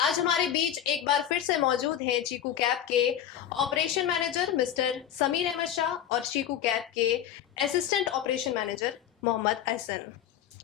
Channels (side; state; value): right; quieter; 10.3 dB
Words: आज हमारे बीच एक बार फिर से मौजूद हैं चीकू कैब के operation manager mister Sameer Ahmed Shah और चीकू कैब के assistant operation manager Mohammad Ahsan.